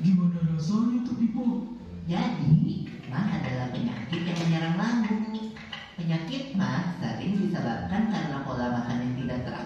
rasanya tuh, Pipo? Jadi, mah adalah penyakit yang menyerang lambung. Penyakit mah sering disebabkan karena pola makan yang tidak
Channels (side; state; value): both; identical; correlation 1.00